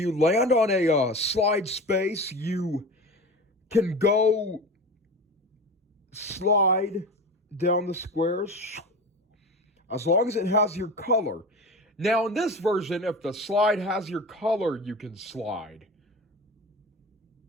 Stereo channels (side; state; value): both; normal; correlation 0.31